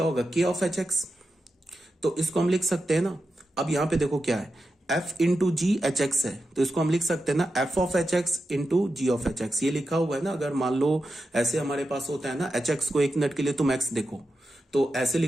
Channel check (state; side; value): normal; both; correlation 0.89